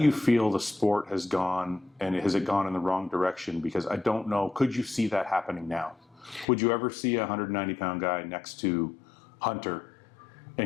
feel the sport has gone, and has it gone in the wrong direction? Because I don't know, could you see that happening now? Would you ever see a 190-pound guy next to Hunter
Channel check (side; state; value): right; drops out; at 6.5 s